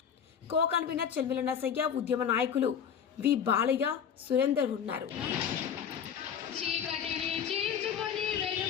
co convener Chelmila Nasayya, ఉద్యమ నాయకులు వి బాలయ్య, సురేందర్ ఉన్నారు.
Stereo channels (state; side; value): quieter; right; 7.9 dB